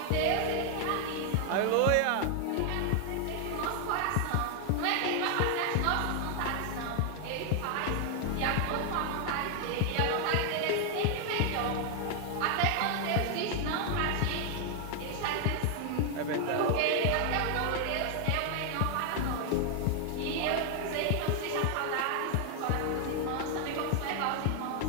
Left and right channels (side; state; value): both; different; correlation 0.00